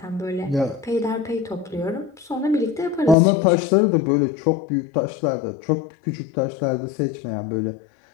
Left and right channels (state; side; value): drops out; right; at 3.2 s